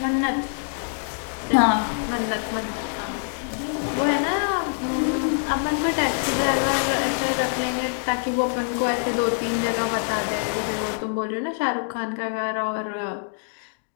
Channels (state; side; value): silent; right; digital silence